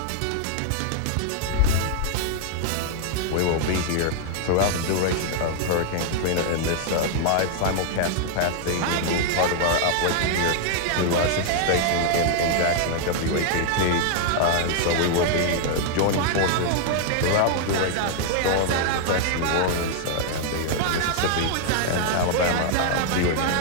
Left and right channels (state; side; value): different; both; correlation 0.00